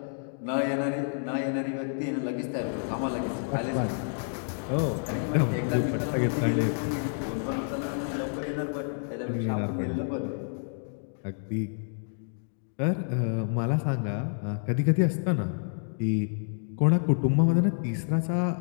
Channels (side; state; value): right; silent; digital silence